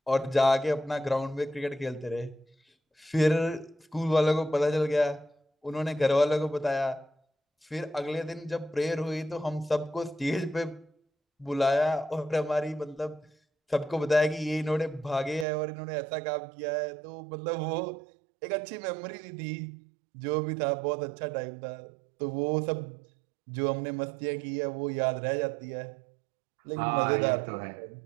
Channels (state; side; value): drops out; left; at 15.5 s